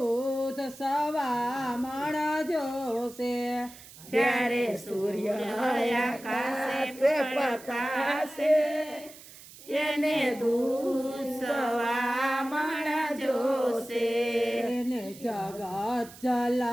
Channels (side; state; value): right; noise; hiss, 19 dB below the sound